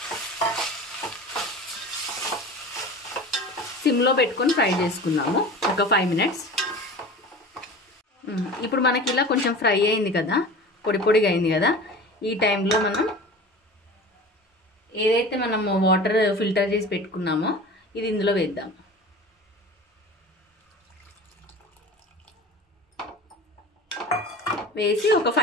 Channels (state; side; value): normal; both; correlation 0.37